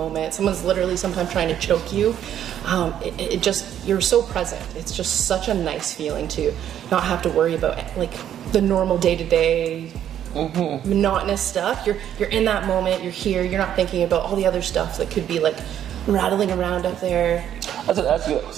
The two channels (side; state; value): left; quieter; 10.3 dB